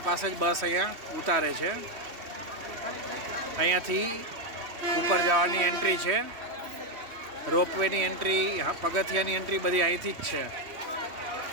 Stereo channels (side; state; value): left; late; 3.1 ms